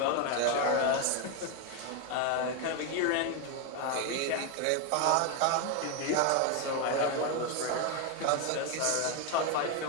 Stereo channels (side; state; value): both; different; correlation 0.02